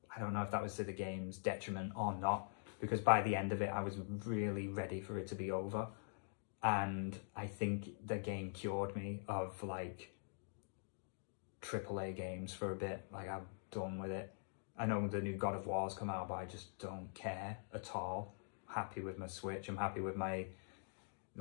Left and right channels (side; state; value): right; silent; digital silence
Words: I don't know if that was to the game's detriment or not, because by the end of it I was really ready for it to be over, and I think the game cured me of like AAA games for a bit. Like, I'm done with it. I know the new God of War's come out, but I just don't care at all. Happy with my Switch. I'm happy with my